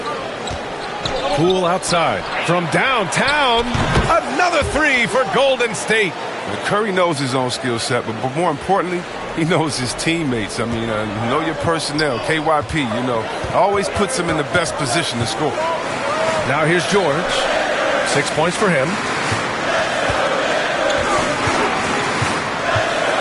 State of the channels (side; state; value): both; identical; correlation 1.00